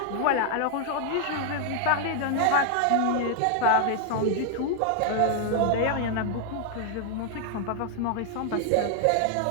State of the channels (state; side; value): different; both; correlation 0.00